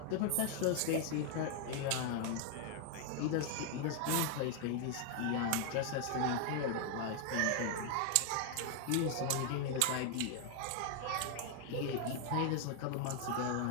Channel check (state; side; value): different; both; correlation 0.00